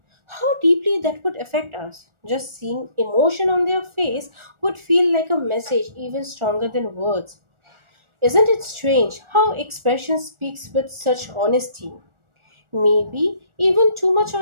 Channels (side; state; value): left; late; 1.4 ms